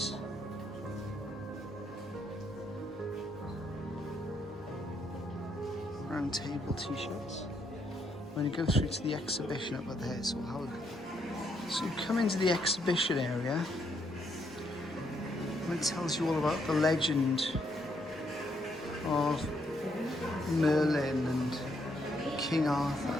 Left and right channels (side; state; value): both; normal; correlation 0.74